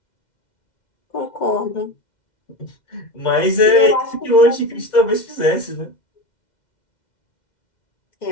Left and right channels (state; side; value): late; right; 2.1 ms